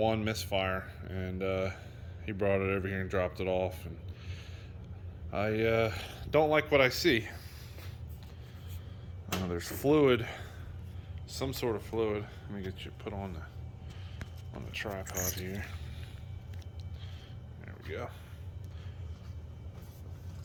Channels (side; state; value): both; identical; correlation 1.00